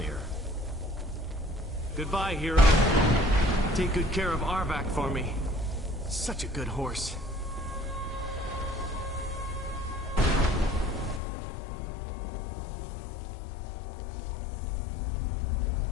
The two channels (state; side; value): drops out; right; at 11.2 s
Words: Goodbye, hero. Take good care of Arvak for me. Such a good horse.